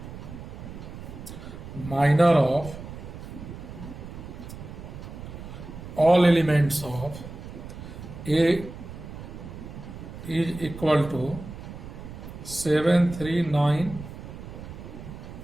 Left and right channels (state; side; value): noise; right; rumble, 12 dB below the sound